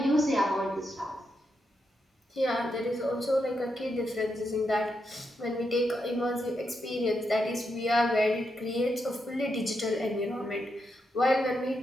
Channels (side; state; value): both; normal; correlation 0.83